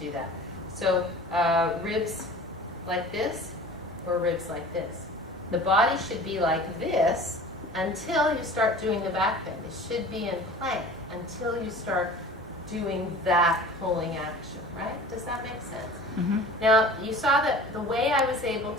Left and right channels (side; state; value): both; normal; correlation 0.41